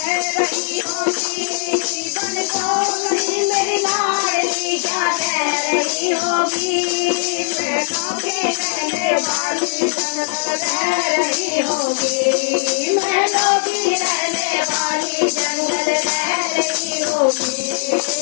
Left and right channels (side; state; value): right; silent; digital silence